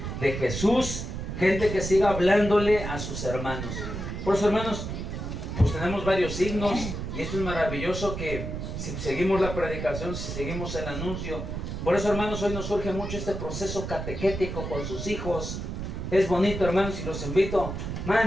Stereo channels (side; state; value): right; noise; rumble, 5 dB below the sound